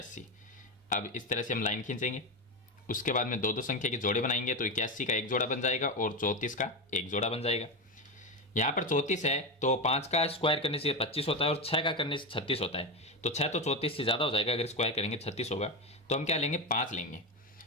अब इस तरह से हम लाइन खींचेंगे, उसके बाद में दो संख्या के जोड़े बनाएंगे, तो 81 का एक जोड़ा बन जाएगा और 34 का एक जोड़ा बन जाएगा। यहाँ पर 34 है तो 5 का स्क्वायर करने से 25 होता है और 6 का करने से 36 होता है। तो 6 तो 34 से ज़्यादा हो जाएगा, अगर स्क्वायर करेंगे 36 होगा। तो हम क्या लेंगे, 5 लेंगे।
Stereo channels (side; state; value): both; normal; correlation 0.14